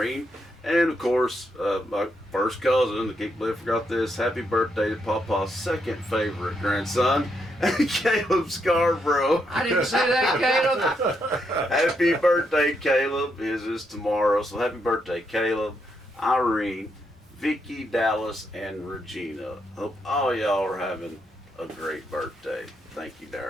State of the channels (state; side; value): normal; both; correlation 0.79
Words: And of course, my first cousin, I can't believe I forgot this. Happy birthday to Papa's second favorite grandson, Caleb Scarborough. I didn't say that, Caleb. Happy birthday, Caleb. His is tomorrow. So happy birthday, Caleb, Irene, Vicki, Dallas, and Regina. Hope all y'all are having a great birthday. Thank you,